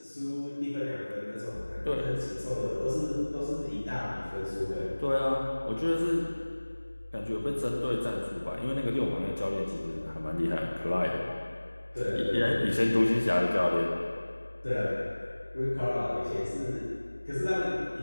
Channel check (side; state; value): both; inverted; correlation -1.00